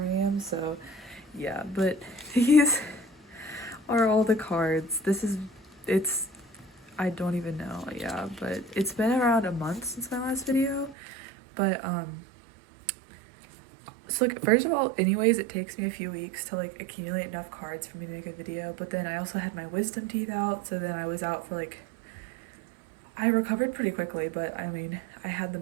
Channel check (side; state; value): left; drops out; at 11.0 s